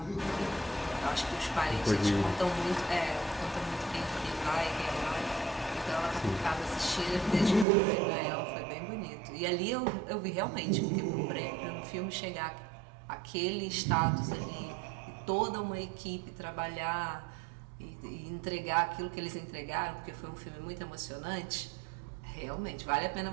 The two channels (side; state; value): left; drops out; at 7.7 s